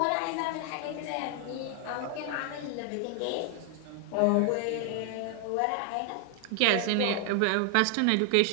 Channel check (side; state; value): both; different; correlation 0.00